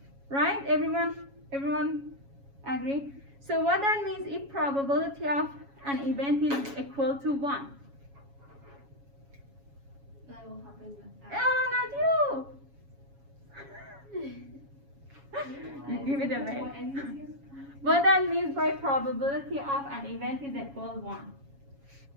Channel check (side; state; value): left; late; 7.2 ms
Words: Right? Everyone agree? So what that means, if probability of an event is equal to 1. That will happen. Oh, not you! You give it away. What ends here? What that means by probability of an event is equal 1.